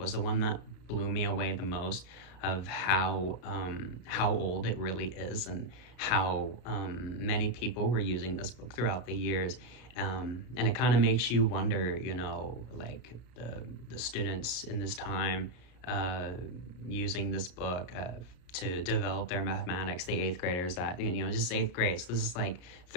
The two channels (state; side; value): late; right; 33 ms